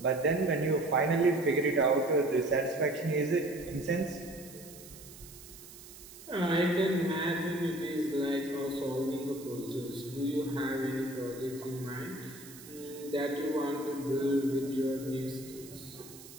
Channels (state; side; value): noise; right; hiss, 17 dB below the sound